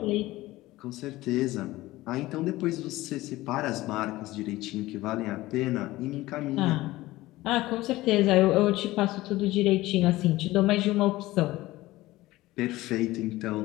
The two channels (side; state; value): right; quieter; 17.9 dB